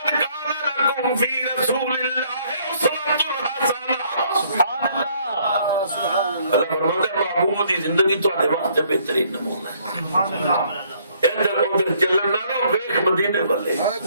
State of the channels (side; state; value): both; inverted; correlation -0.65